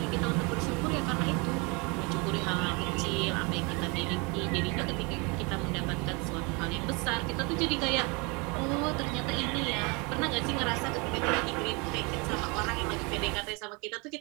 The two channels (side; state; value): left; quieter; 29.4 dB